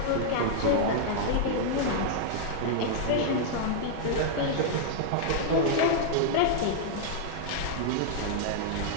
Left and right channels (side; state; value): both; different; correlation -0.01